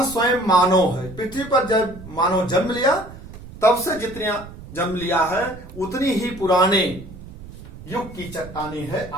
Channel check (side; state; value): right; noise; rumble, 16 dB below the sound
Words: स्वयं मानव है। पृथ्वी पर जब मानव जन्म लिया तब से जितनी जन्म लिया है उतनी ही पुराने युग की चट्टाने है